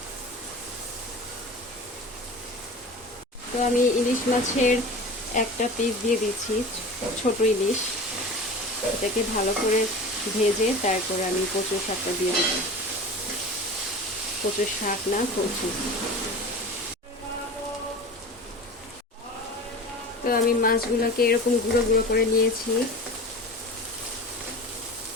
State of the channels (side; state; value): both; normal; correlation 0.34